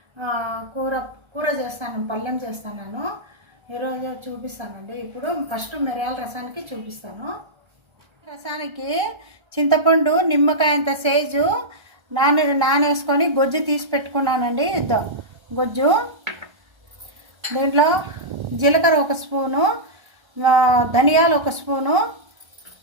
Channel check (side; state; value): left; late; 1.3 ms